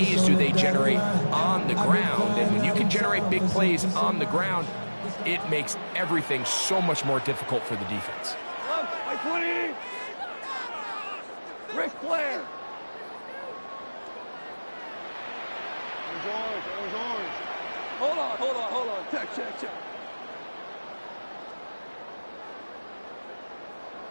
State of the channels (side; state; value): both; inverted; correlation -1.00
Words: do they generate on the ground. And when you can generate big plays on the ground, it makes everything so much more difficult for the defense. By 20. Ric Flair. Orange. Hold on. Check.